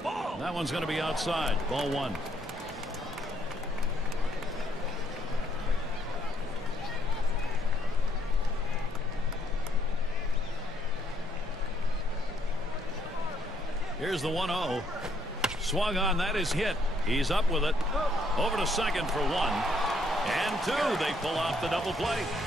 Ball. That one's going to be outside. Ball one. Here's the 1-0. Swung on. That is hit. He's up with it. Over to second for one. And two. They pull off the double play.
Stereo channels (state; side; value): normal; both; correlation 0.71